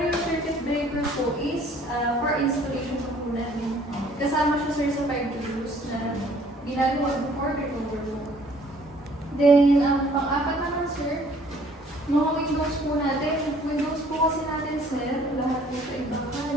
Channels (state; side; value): normal; both; correlation 0.57